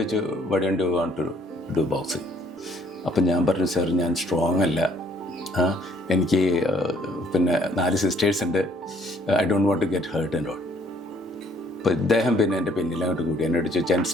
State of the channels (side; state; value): both; normal; correlation 0.62